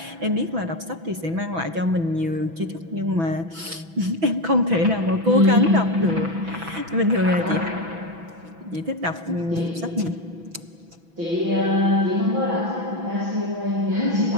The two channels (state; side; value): late; left; 6.0 ms